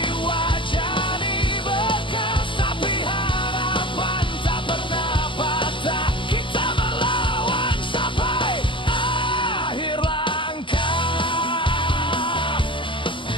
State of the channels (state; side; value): late; right; 0.25 ms